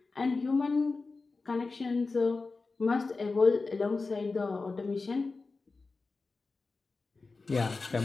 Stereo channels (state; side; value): quieter; right; 3.9 dB